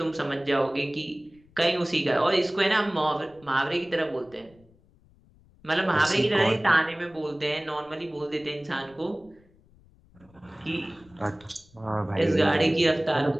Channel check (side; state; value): left; noise; rumble, 29 dB below the sound